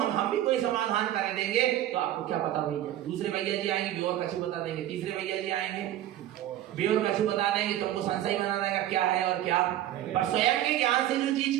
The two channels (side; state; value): left; quieter; 12.8 dB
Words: भी कोई समाधान कर देंगे तो आपको क्या पता भैया, दूसरे भैया जी आएंगे बेवर कछु बता देंगे, तीसरे भैया जी आएंगे बेवर कछु बता देंगे, तुमको संशय बना देगा क्या है और क्या। पर स्वयं के ज्ञान से जो चीज